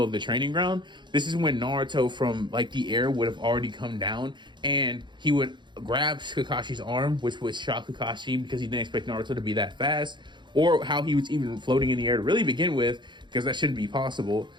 of the training ground. This is when Naruto from like the air would have already come down, and he would grab Kakashi's arm, which would shock Kakashi because he didn't expect Naruto to be that fast, or how he was even floating in the air to really begin with, because that shouldn't be possible.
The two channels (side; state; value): left; late; 0.22 ms